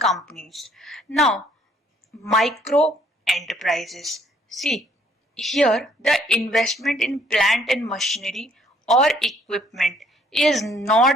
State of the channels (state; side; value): normal; both; correlation 0.64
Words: Now micro enterprises. See, here the investment in plant and machinery or equipment is